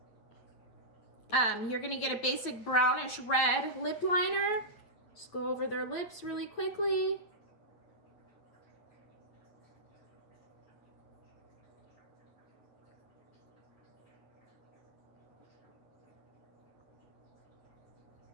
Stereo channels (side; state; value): right; late; 8.8 ms